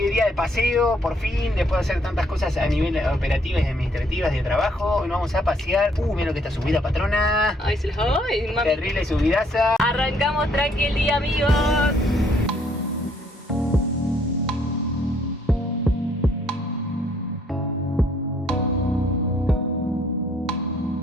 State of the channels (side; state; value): both; normal; correlation 0.67